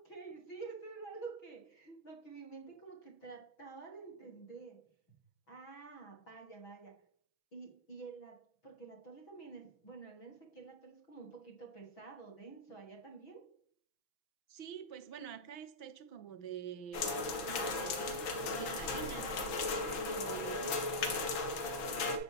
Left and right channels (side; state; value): right; late; 6.2 ms